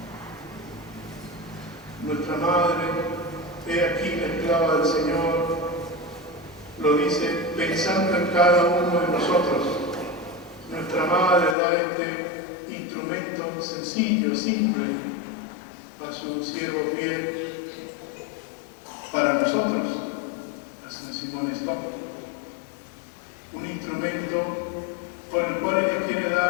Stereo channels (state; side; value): drops out; right; at 11.6 s